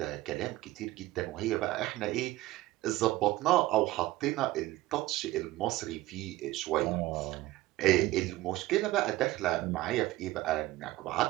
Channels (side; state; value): left; quieter; 17.6 dB